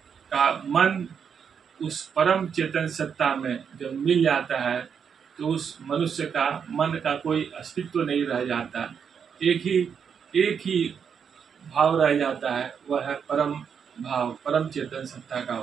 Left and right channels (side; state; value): left; quieter; 7.0 dB